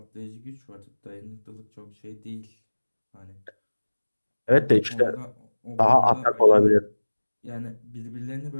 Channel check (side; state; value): both; inverted; correlation -1.00